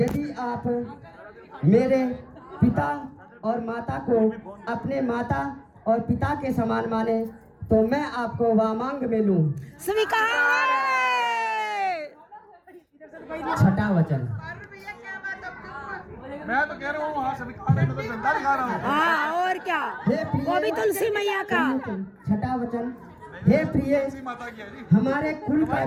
आप मेरे पिता और माता को अपने माता और पिता के समान माने तो मैं आपको वामांग में लूं। स्वीकार है। छठा वचन मैं तो कह रहा हूँ वहाँ स्वीकार है, मैं तो झंडा दिखा रहा हूँ। हाँ और क्या, वो भी तुलसी मैया का। छठा वचन हे प्रिय माता की है जी। हमारे कुल का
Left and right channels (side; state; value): both; identical; correlation 1.00